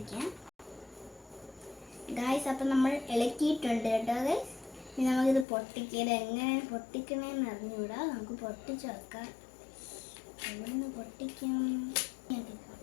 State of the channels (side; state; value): right; drops out; at 5.5 s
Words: ഗൈസ്. അപ്പം നമ്മൾ ഇളക്കിയിട്ടുണ്ട് കേട്ടോ ഗൈസ്. ഇനി നമുക്കിത് പൊട്ടിക്കൽ എങ്ങനെയാണ് പൊട്ടിക്കണേന്ന് അറിഞ്ഞുകൂടാ. നമുക്ക് പൊട്ടിച്ച് വെക്കാം. എവിടുന്ന് പൊട്ടിക്കും?